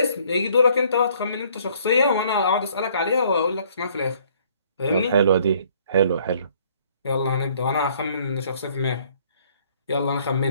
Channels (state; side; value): inverted; both; correlation -0.61